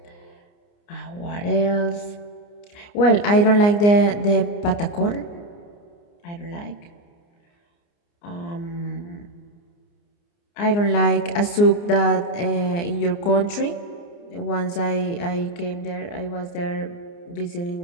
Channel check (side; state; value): right; late; 29 ms